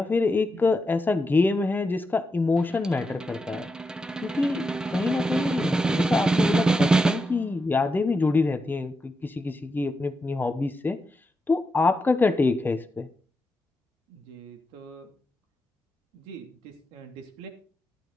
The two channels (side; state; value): both; normal; correlation 0.87